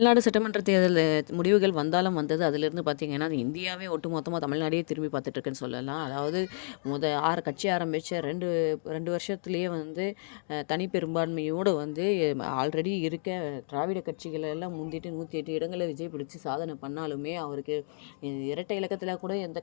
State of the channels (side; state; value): right; silent; digital silence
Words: தமிழ்நாடு சட்டமன்ற தேர்தல் முடிவுகள் வந்தாலும் வந்தது. அதிலிருந்து பார்த்தீங்கன்னா, அது இந்தியாவே ஒட்டுமொத்தமா தமிழ்நாடையே திரும்பி பார்த்துட்டு இருக்குன்னு சொல்லலாம். அதாவது 6 கட்சி ஆரம்பிச்ச 2 வருஷத்திலேயே வந்து தனி பெரும்பான்மையோடு வந்து ஆல்ரெடி இருக்க திராவிட கட்சிகள் எல்லாம் முந்திட்டு 108 இடங்கள விஜய் பிடிச்சு சாதனை பண்ணாலுமே, அவருக்கு இரட்டை இலக்கத்தில கூட